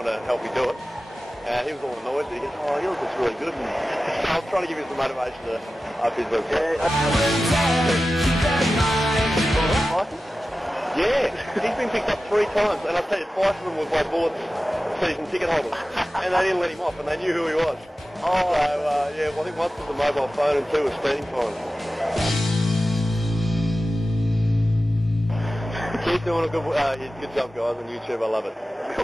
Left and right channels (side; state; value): both; normal; correlation 0.94